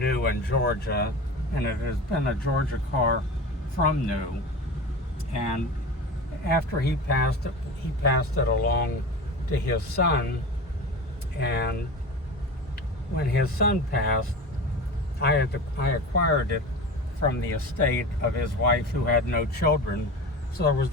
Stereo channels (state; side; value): normal; both; correlation 0.30